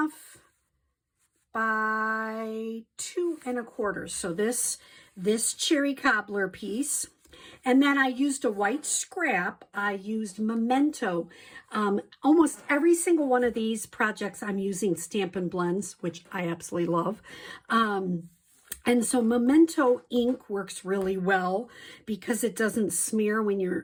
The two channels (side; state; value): both; identical; correlation 1.00